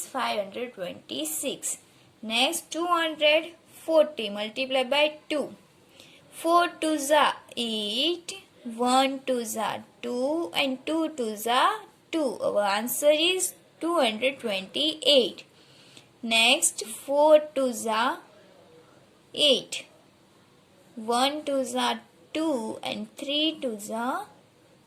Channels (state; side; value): identical; both; correlation 1.00